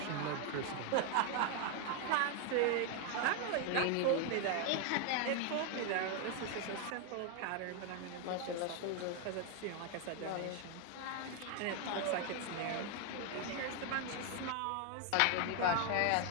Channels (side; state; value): both; different; correlation 0.01